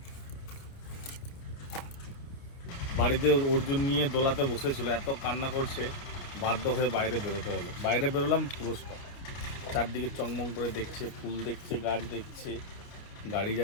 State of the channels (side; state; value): right; late; 29 ms